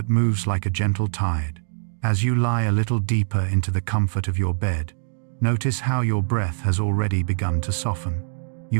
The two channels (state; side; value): silent; left; digital silence